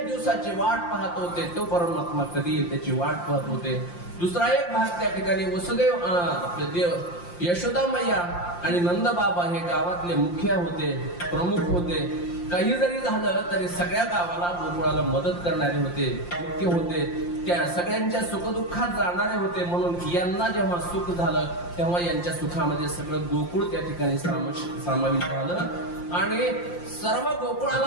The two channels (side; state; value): right; late; 5.7 ms